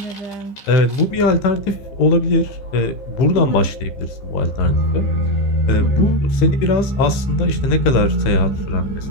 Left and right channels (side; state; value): right; late; 15 ms